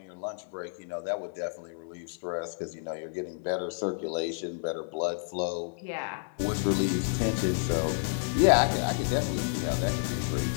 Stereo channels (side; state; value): right; silent; 58 dB below the other